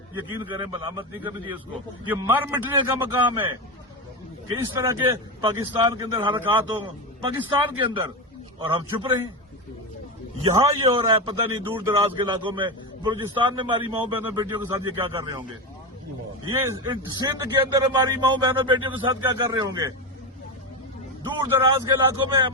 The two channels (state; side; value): normal; both; correlation 0.16